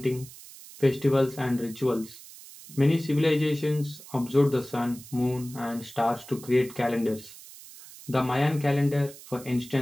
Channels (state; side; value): noise; right; hiss, 18 dB below the sound